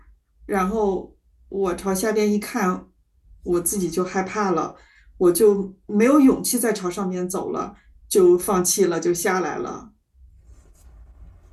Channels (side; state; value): both; identical; correlation 1.00